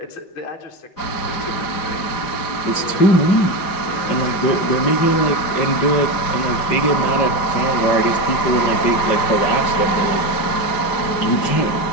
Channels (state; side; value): late; right; 5.0 ms